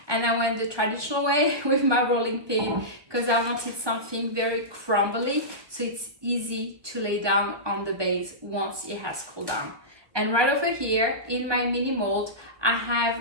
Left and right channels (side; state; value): left; late; 1.2 ms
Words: and I went the traditional way with my rolling pin, because I wanted something very crumbly, so it's easy to lay down on the base once it has cooled down. And right over here, in my mini mold, I have